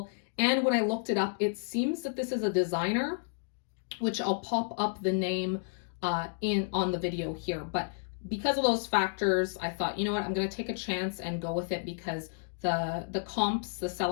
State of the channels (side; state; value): right; silent; digital silence